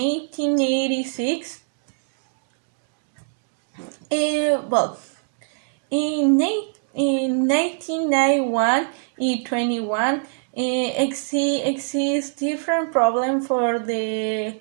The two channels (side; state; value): left; silent; 64 dB below the other